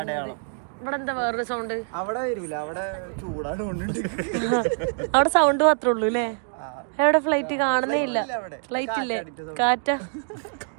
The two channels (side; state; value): left; silent; digital silence